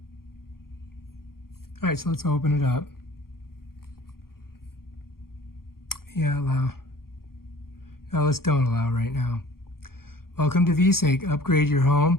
All right, so let's open it up. Yeah, allow. No, let's don't allow right now. Welcome to VeSync. Upgrade your home,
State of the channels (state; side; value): late; right; 0.93 ms